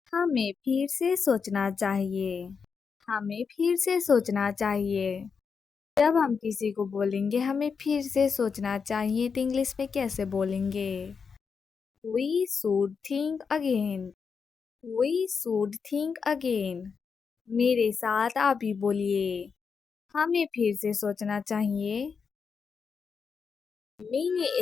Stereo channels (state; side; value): quieter; right; 5.8 dB